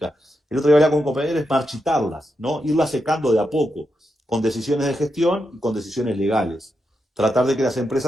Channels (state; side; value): normal; both; correlation 0.85